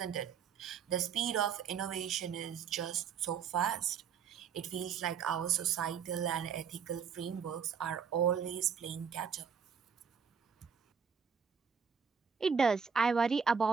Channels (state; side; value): quieter; left; 6.7 dB